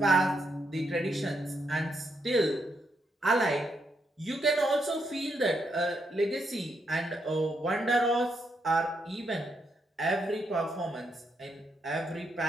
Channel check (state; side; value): normal; both; correlation 0.79